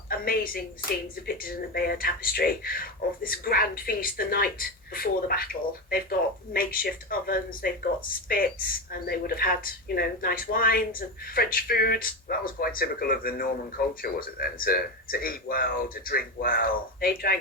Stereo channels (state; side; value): normal; both; correlation 0.17